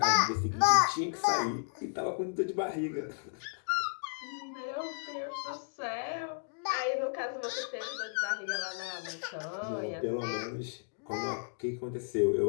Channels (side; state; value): right; silent; digital silence